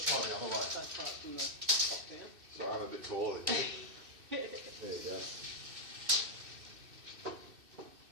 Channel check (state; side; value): late; left; 2.6 ms